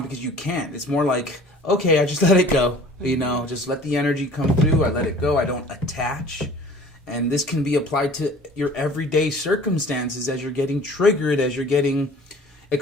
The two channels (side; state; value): both; normal; correlation 0.48